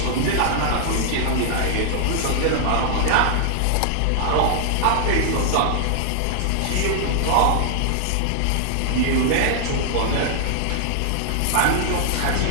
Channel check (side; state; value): both; different; correlation -0.01